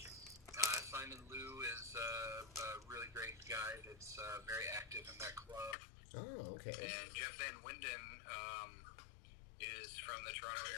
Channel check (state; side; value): drops out; right; at 5.8 s